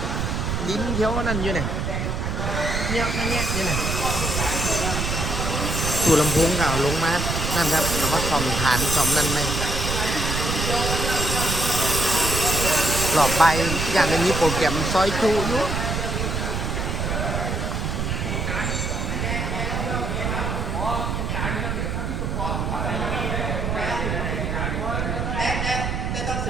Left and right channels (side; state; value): right; noise; rumble, 1 dB below the sound